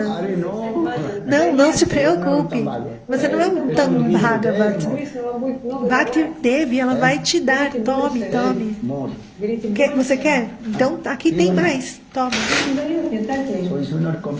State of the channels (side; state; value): both; identical; correlation 1.00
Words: Não se preocupe. Você não é um Tam Bhagavat. Кришна вам будет много Bhakti Devi, ela vai te dar. Tome. more. Você quer? Então aqui tem mais. Toma. дает, не так ли? So you should not